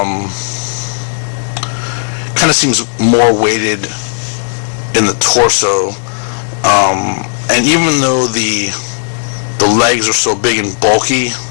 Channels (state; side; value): silent; right; digital silence